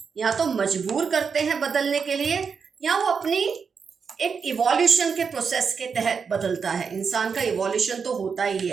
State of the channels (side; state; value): left; quieter; 5.9 dB